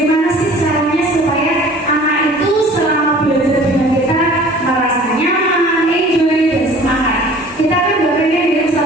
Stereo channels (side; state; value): both; normal; correlation 0.48